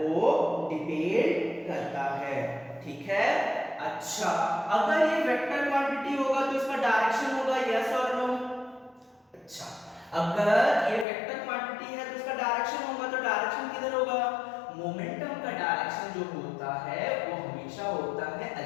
डिपेंड करता है। ठीक है, अच्छा, अगर ये वेक्टर क्वांटिटी होगा तो इसका डायरेक्शन होगा यस और नो। अच्छा, अगर ये वेक्टर क्वांटिटी है तो इसका डायरेक्शन होगा, तो डायरेक्शन किधर होगा, मोमेंटम का डायरेक्शन जो होता है वो हमेशा होता है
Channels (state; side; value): drops out; right; at 11.1 s